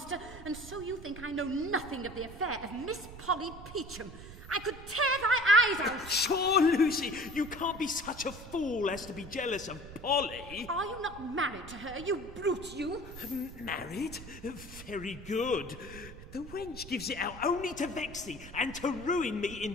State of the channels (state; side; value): noise; right; rumble, 14 dB below the sound